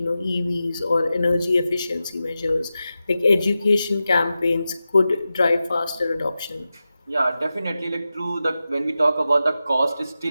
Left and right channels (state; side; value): inverted; both; correlation -0.92